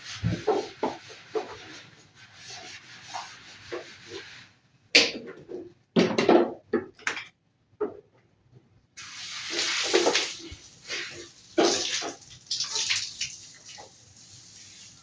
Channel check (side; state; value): both; identical; correlation 1.00